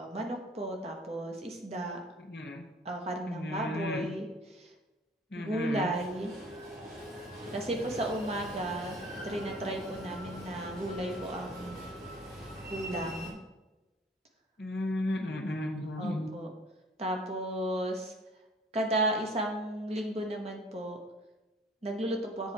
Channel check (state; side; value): normal; both; correlation 0.51